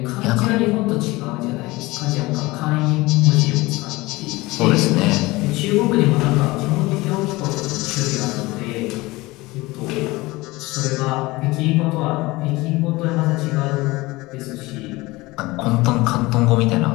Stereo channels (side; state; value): right; quieter; 21.2 dB